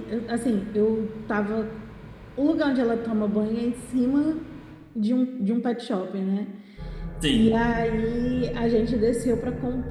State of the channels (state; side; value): identical; both; correlation 1.00